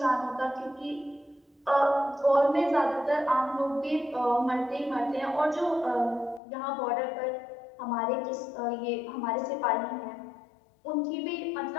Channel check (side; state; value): right; drops out; at 6.4 s